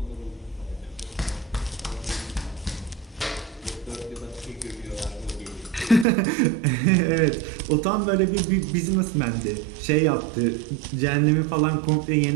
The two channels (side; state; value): left; drops out; at 6.1 s